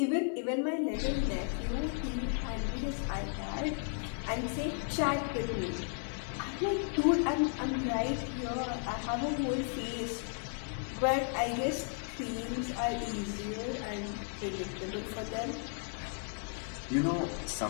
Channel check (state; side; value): silent; right; 55 dB below the other